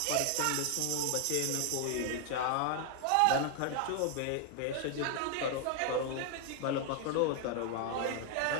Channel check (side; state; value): both; different; correlation 0.00